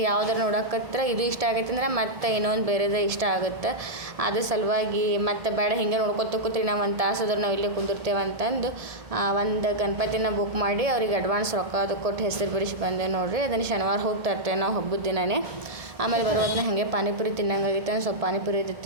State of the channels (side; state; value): left; late; 1.7 ms